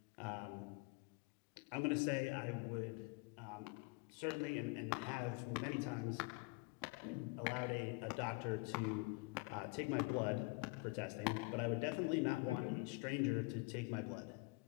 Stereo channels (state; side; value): quieter; right; 27.7 dB